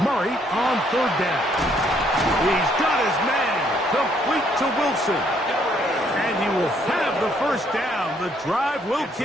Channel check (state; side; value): normal; both; correlation 0.68